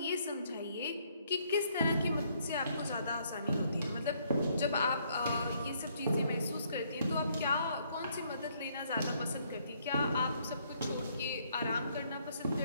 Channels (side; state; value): both; inverted; correlation -0.68